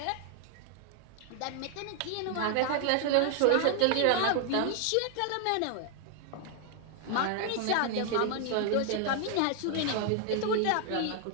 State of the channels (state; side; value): different; both; correlation 0.00